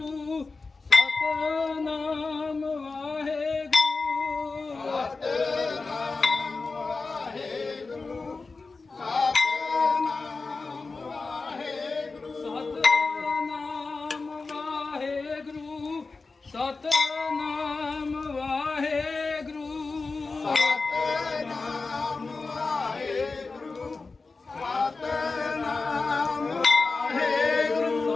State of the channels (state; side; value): quieter; right; 4.0 dB